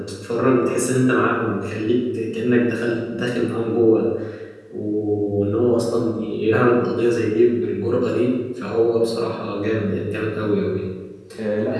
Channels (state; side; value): identical; both; correlation 1.00